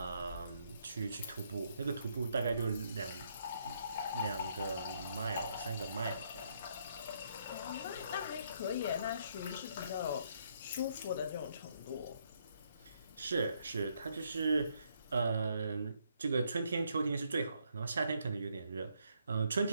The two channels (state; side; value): inverted; both; correlation -0.73